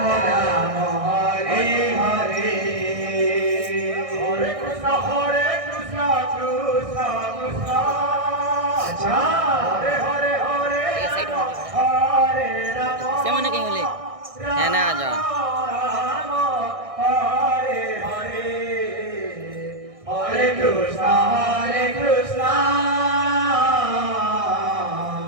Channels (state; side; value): late; left; 1.6 ms